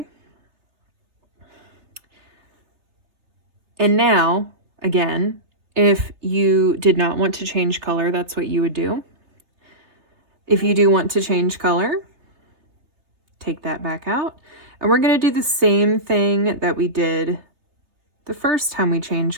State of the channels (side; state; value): left; late; 3.3 ms